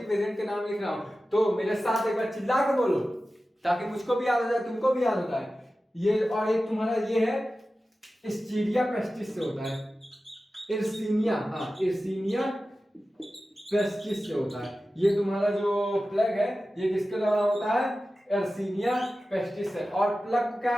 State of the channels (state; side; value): normal; both; correlation 0.94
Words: एजेंट के नाम लिख रहा हूं, तो मेरे साथ एक बार चिल्ला के बोलो ताकि मुझको भी याद हो जाए, तुमको भी याद होता है ये। और एक तुम्हारा ये है एस्चीरिया पेस्टिस से होता है, इर्सीनिया पेस्टिस से होता है। ये तुम्हारा जो प्लग है ये किसके द्वारा होता है, एर्सीनिया पेस्टिस है। और प्लग को